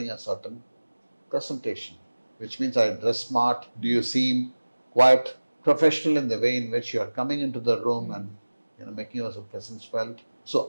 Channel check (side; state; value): both; inverted; correlation -1.00